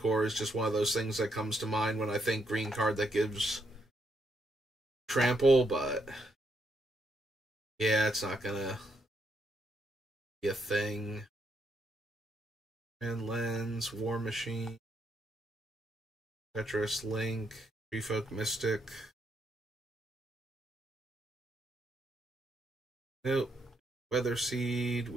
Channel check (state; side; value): normal; both; correlation 0.77